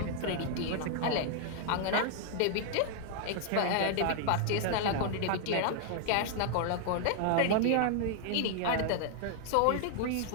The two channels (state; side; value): different; both; correlation 0.00